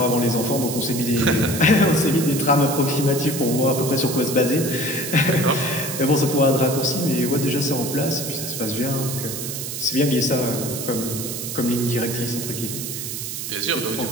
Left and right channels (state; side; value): noise; right; hiss, 6 dB below the sound